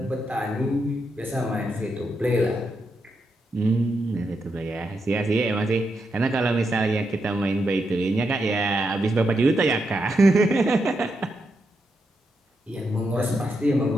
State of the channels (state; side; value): normal; both; correlation 0.83